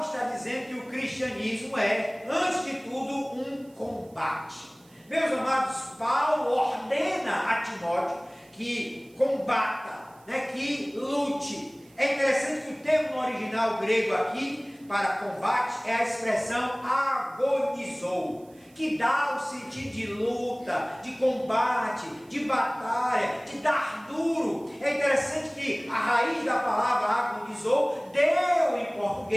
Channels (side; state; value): right; noise; hiss, 29 dB below the sound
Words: está dizendo que o cristianismo é, antes de tudo, um combate. Meus amados, Paulo ordena a Timóteo que combata, que lute. É interessante que o termo no original grego aqui, para combate, é a expressão agonizou, que dá o sentido de luta, de combate, de batalha, de dar duro. É interessante que a raiz da palavra agonizou deu em